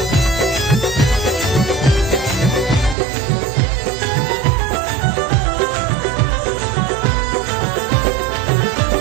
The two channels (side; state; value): left; drops out; at 3.0 s